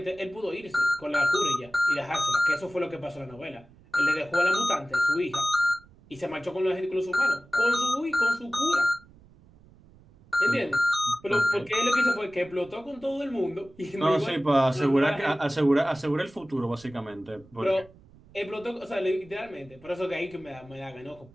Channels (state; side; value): noise; right; rumble, 25 dB below the sound